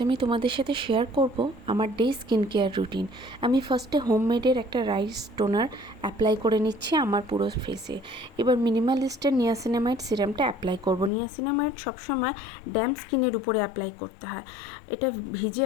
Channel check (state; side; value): drops out; right; at 11.1 s